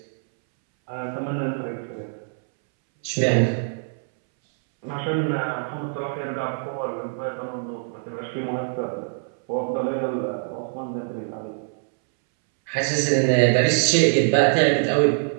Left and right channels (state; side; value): silent; left; 63 dB below the other